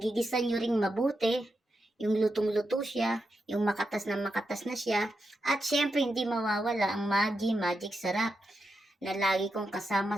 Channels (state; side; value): normal; both; correlation 0.86